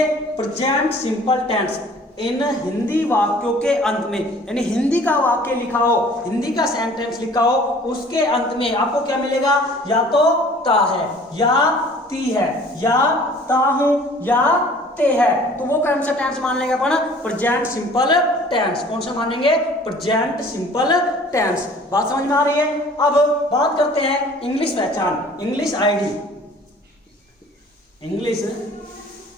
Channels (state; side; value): normal; both; correlation 0.50